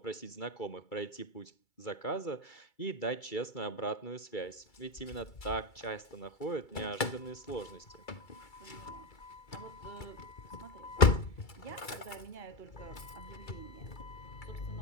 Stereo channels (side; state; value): right; late; 2.3 ms